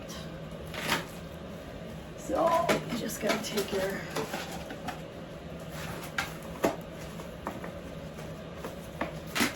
So you just gotta take your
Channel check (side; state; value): both; identical; correlation 1.00